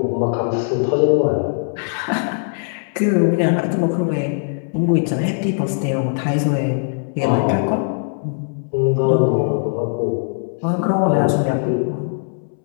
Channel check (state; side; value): silent; right; 66 dB below the other